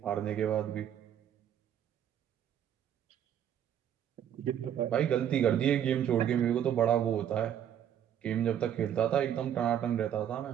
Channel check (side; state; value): left; quieter; 9.9 dB